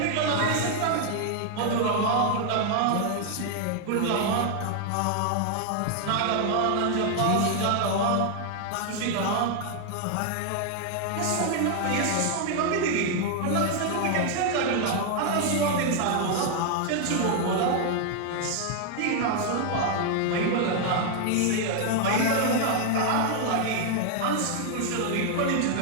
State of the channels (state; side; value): different; both; correlation 0.00